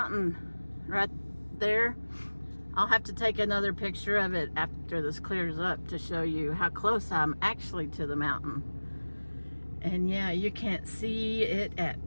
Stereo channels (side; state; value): both; inverted; correlation -1.00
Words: right there. I'll have to take another picture of it after this clears up to show you how close I'm actually to the mountain. And yeah, you can't see it at